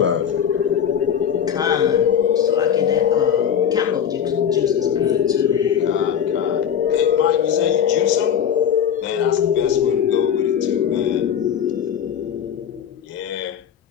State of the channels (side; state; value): right; quieter; 8.6 dB